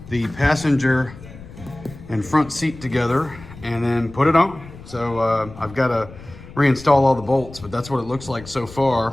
the passenger and front seat together and then put it on. So I've got to reinstall all the bolts, but that's what it looks like so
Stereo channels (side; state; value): left; noise; rumble, 17 dB below the sound